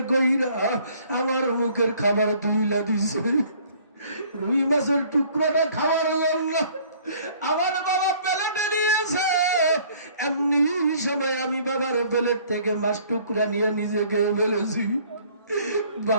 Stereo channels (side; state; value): both; inverted; correlation -0.57